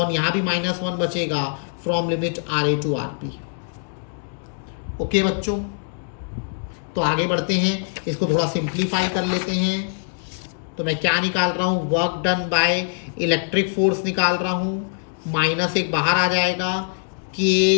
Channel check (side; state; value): right; silent; digital silence